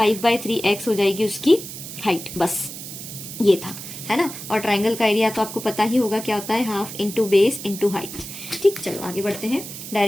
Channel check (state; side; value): noise; right; hiss, 10 dB below the sound